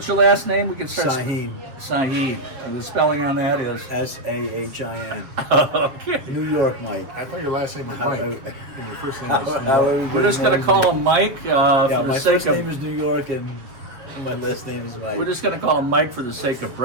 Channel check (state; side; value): late; left; 7.4 ms